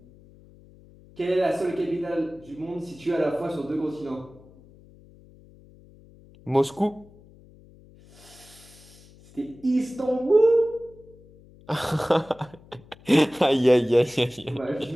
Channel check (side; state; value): left; noise; hum, 25 dB below the sound